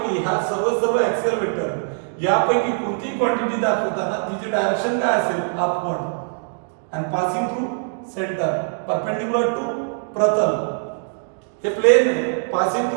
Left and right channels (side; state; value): left; silent; digital silence